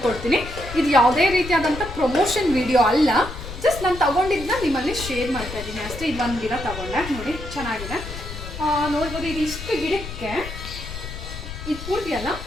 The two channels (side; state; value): left; noise; rumble, 10 dB below the sound